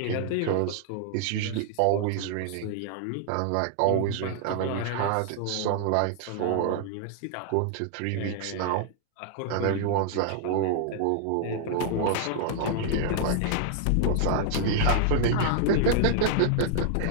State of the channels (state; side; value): different; both; correlation -0.01